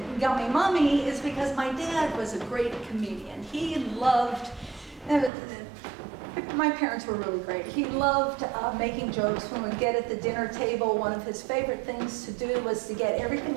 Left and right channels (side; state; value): left; drops out; at 5.3 s